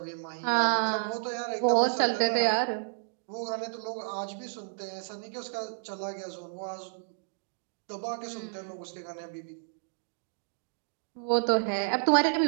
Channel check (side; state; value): left; silent; digital silence